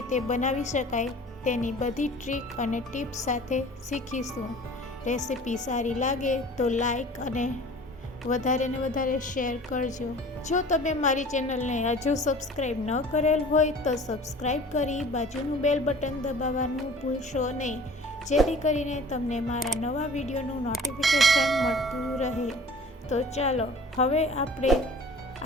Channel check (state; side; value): normal; both; correlation 0.45